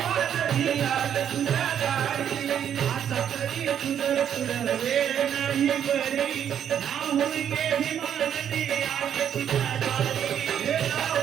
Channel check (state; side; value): quieter; left; 9.2 dB